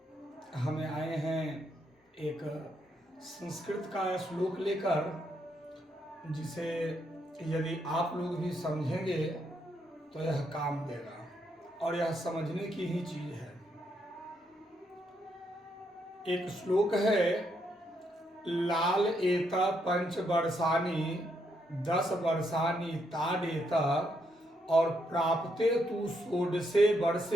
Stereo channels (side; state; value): both; normal; correlation 0.77